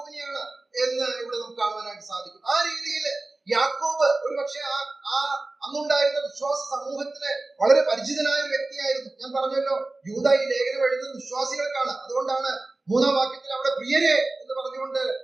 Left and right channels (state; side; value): quieter; left; 3.0 dB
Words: എന്ന് ഇവിടെ നമുക്ക് കാണുവാനായിട്ട് സാധിക്കും. ആ രീതിയിൽ യാക്കോബ് ഒരു പക്ഷേ ആ അന്നുണ്ടായിരുന്ന വിശ്വാസ സമൂഹത്തിന് വളരെ പരിചിതനായ ഒരു വ്യക്തിയായിരുന്നു. ഞാൻ പറഞ്ഞല്ലോ, യൂദാ ഈ ലേഖനം എഴുതുന്നത് വിശ്വാസികൾക്കാണ്. അതുകൊണ്ടാണ് 3-ാം വാക്യത്തിൽ അവിടെ പ്രിയരെ എന്ന് പറഞ്ഞുകൊണ്ട്